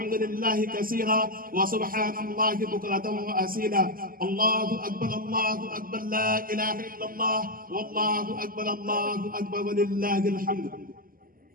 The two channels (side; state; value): left; late; 0.42 ms